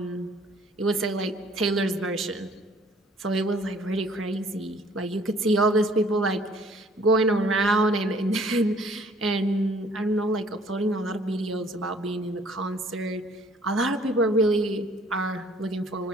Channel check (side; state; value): both; normal; correlation 0.58